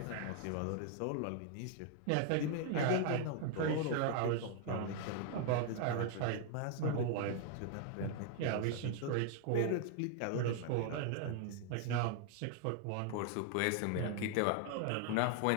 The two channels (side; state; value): both; different; correlation 0.00